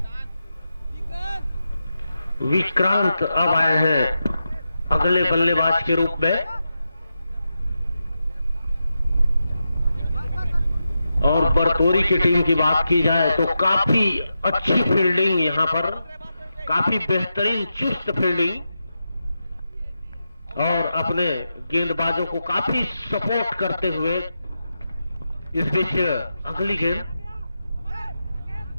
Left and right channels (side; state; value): both; inverted; correlation -0.89